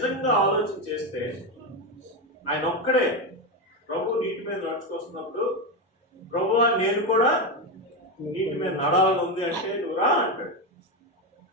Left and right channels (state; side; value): normal; both; correlation 0.11